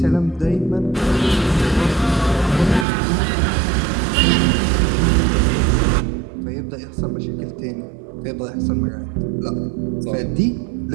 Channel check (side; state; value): left; drops out; at 2.9 s